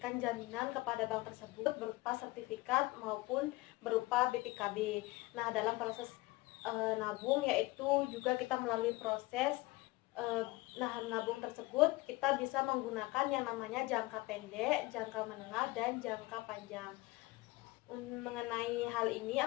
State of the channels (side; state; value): right; quieter; 21.1 dB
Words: jaminan kepada bank tersebut berupa sertifikat maupun berupa BPKB. Nah, dalam proses nabung yaitu juga kita melalui proses nabung tersebut kita bisa menggunakan yang namanya jangka pendek, jangka menengah, dan jangka panjang. Mengenai hal ini